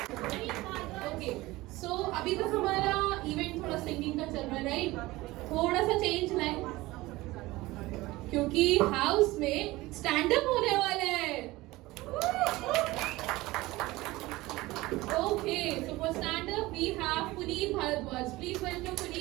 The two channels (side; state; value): left; quieter; 19.5 dB